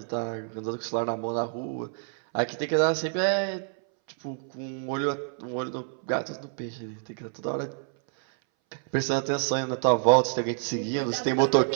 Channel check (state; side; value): silent; left; 60 dB below the other